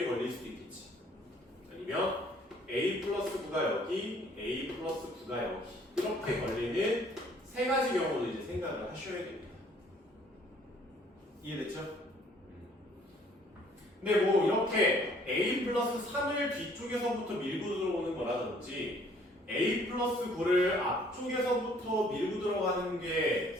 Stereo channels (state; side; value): normal; both; correlation 0.60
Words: 걸릴 수도 있겠지. 아니면 a 플러스 9가 여기, a 플러스 9가 여기 이렇게 걸리는 세 가지 경우도 이제 생각을 하셔야 됩니다. 이해됐죠? 근데 뭐 이렇게 a 플러스 3을 뒤쪽에서부터 밀고 들어오는 거라든지 a 플러스 9를 앞쪽에서부터 밀고 들어가는 게